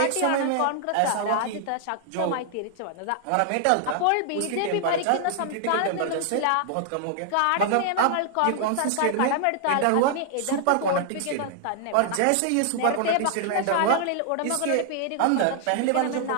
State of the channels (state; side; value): different; both; correlation 0.00